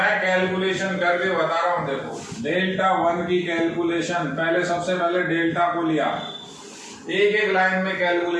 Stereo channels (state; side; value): identical; both; correlation 1.00